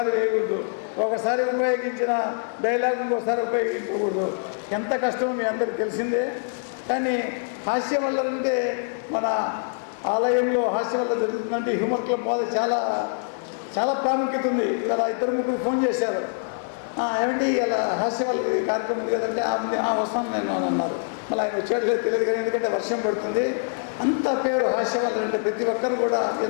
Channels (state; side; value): silent; right; digital silence